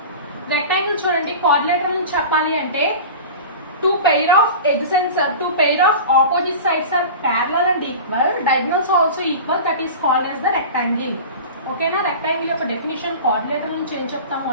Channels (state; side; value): inverted; both; correlation -0.33